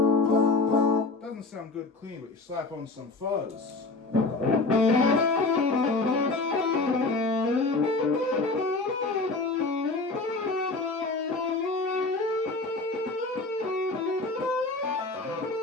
Doesn't sound good clean, but you slap on some fuzz.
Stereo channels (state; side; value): quieter; right; 3.4 dB